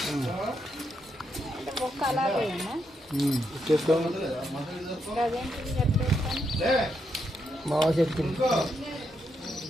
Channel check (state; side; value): normal; both; correlation 0.80